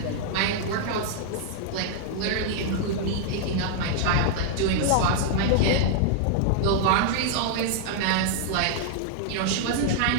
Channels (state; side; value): different; both; correlation -0.01